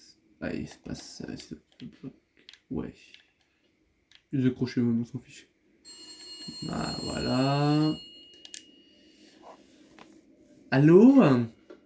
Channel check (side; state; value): both; identical; correlation 1.00